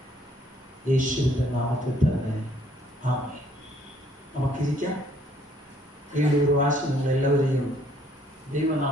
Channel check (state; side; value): normal; both; correlation 0.64